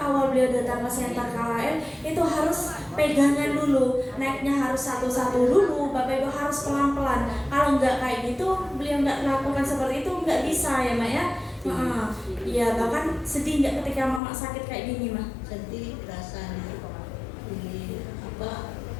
awal beliau datang ke center KLM itu harus pegangan dulu, naiknya harus satu-satu dulu Bapak Ibu, harus pelan-pelan. Kalau nggak kayak gitu beliau nggak melakukan seperti itu nggak bisa ya Mak ya. Iya bahkan sedih nggak ketika Mama sakit kayak gini Mak? Sedih rasanya, ini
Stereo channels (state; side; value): drops out; right; at 14.2 s